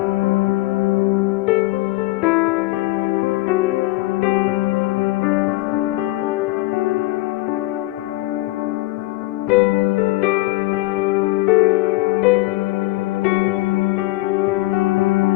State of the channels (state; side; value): quieter; right; 19.5 dB